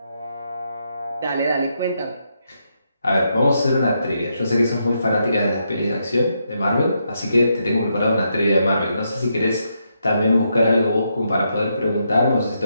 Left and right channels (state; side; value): inverted; both; correlation -0.80